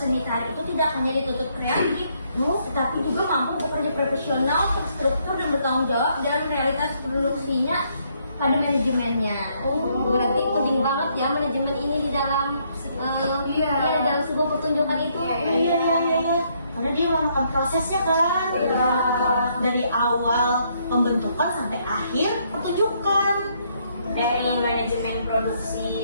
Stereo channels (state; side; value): inverted; both; correlation -0.71